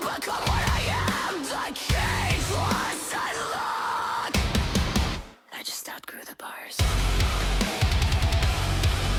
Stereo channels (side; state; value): both; identical; correlation 1.00